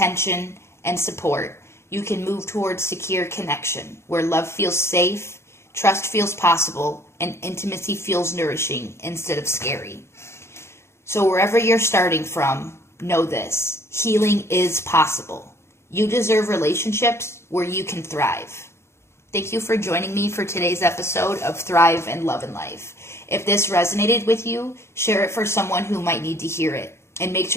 and support, you can move towards secure connection, where love feels safe, trust feels possible, and intimacy feels nourishing instead of scary. So wherever you're starting from, know this: healing is possible. You deserve relationships where you can thrive. Thank you for joining me for today's episode of Thrive and Love and Life. If this resonated with you, share it for someone who might need to hear it. And make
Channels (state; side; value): late; right; 0.13 ms